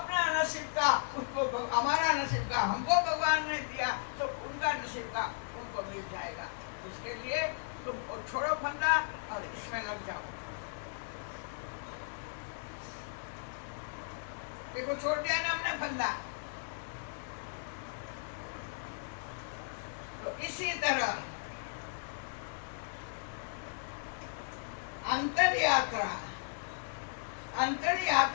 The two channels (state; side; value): silent; right; digital silence